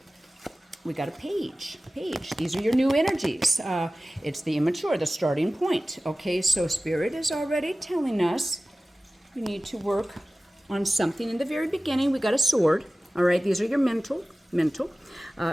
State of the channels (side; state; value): both; normal; correlation 0.96